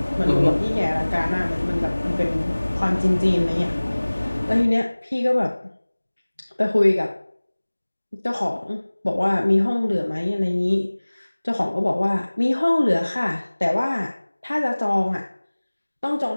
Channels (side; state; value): both; inverted; correlation -1.00